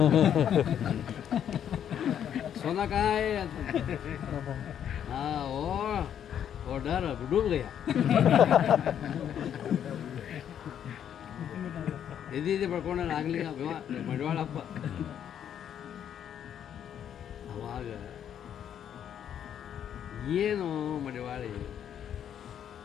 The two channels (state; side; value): quieter; right; 9.4 dB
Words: ಸೋನಾಕಾಯ್ ಅಂತ. ಹಾಂ ಓ ಡರ್ ಡೂಬ್ ಗಯ. ಎದಿ ಬಡ್ಕೊಂಡ ನಾಗಲಿಂಗ ಮಡಿವಾಳಪ್ಪ. ಅವಾಗ ಏನು ಮಡಿವಾಳಿ,